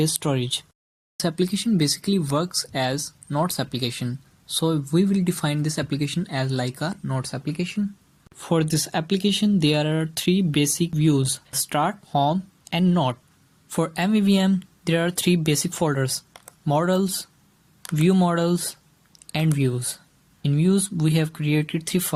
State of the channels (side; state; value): both; identical; correlation 1.00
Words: storage. This application basically works as Notes application. So we will define this application as like a Notes application. For this application, there are three basic views: Start, Home, and Note. For MVVM, there are three basic folders: Models, View Models, and Views. In Views, we have created three